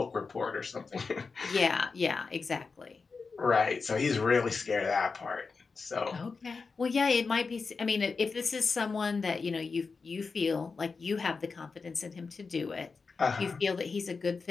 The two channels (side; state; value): right; quieter; 4.6 dB